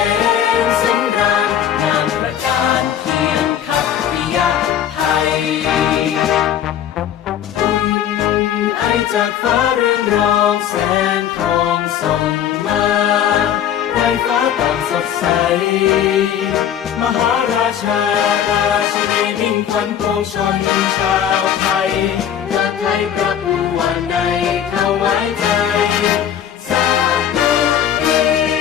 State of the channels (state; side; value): quieter; right; 9.7 dB